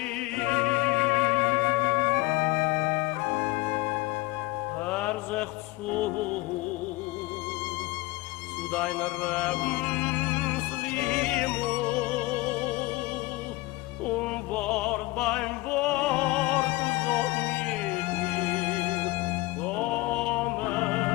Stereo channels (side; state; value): right; quieter; 21.2 dB